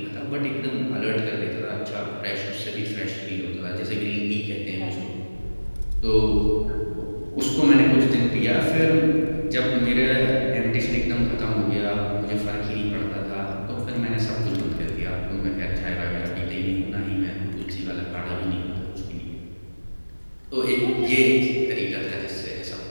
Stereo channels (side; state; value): both; inverted; correlation -1.00